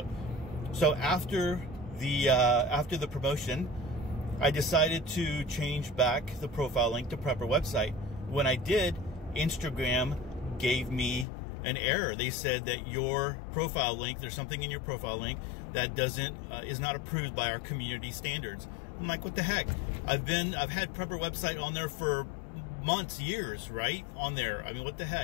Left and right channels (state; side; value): drops out; right; at 11.2 s